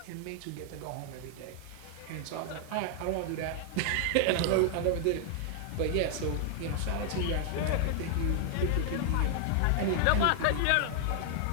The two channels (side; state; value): both; different; correlation 0.00